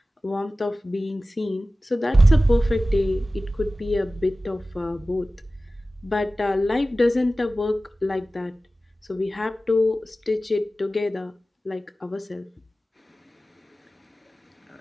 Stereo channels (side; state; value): both; normal; correlation 0.96